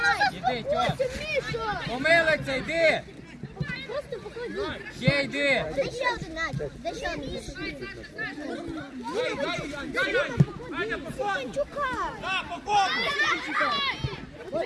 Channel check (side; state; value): both; identical; correlation 1.00